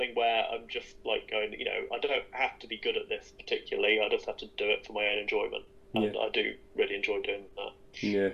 where I'm just like going, I don't have to be good at this particularly, I just have to do it for my own enjoyment, and I do really enjoy doing that. Yeah,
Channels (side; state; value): both; identical; correlation 1.00